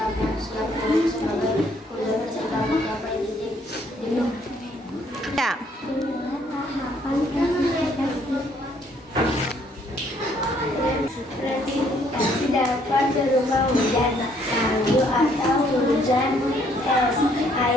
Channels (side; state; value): both; normal; correlation 0.66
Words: yang siap turun sebagai hujan ketika mencapai titik jenuh. Ya. Presipitas dapat berupa hujan salju atau hujan es,